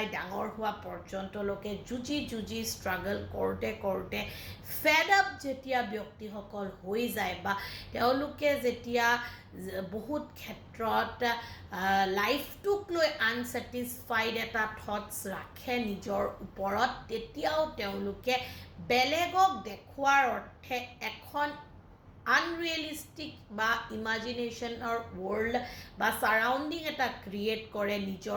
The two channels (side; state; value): both; identical; correlation 1.00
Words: ডাঙৰ হোৱা পৰ্যন্তলৈকে যুঁজি ষ্ট্ৰাগল কৰোঁতে ফেড আপ যেতিয়া ব্যক্তিসকল হৈ যায় বা তেওঁলোকে যেতিয়া বহুত ক্ষেত্ৰত লাইফটোক লৈ আনছেটিছফাইড এটা থটছ ৰাখে নিজৰ ওপৰত তেতিয়াও তেওঁলোকে বেলেগক দেখুৱাৰ অৰ্থে এখন আনৰিয়েলিষ্টিক বা ইমাজিনেশ্যনৰ ৱৰ্ল্ড বা ছাৰাউণ্ডিং এটা ক্ৰিয়েট কৰে